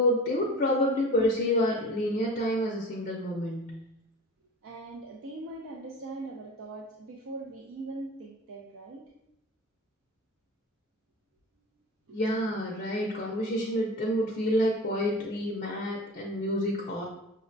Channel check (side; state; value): both; normal; correlation 0.36